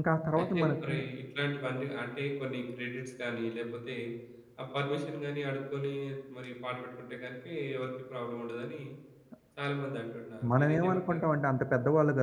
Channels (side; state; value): both; identical; correlation 1.00